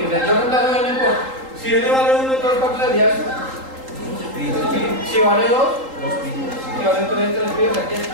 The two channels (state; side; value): late; left; 3.8 ms